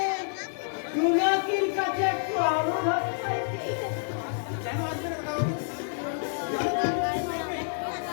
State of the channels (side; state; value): right; silent; 59 dB below the other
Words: জোনাকির কাছে একটু আলো ভাব চাইছি।